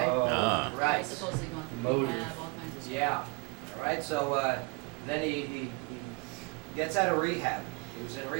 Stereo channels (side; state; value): left; quieter; 29.6 dB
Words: Ah. Right. Supposedly going through Motive. rehab, all kinds of stuff. Yeah. All right. So then he gets out of rehab. He was in